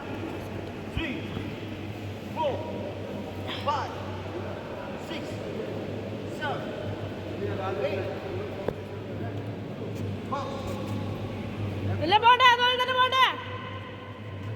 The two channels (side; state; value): both; identical; correlation 1.00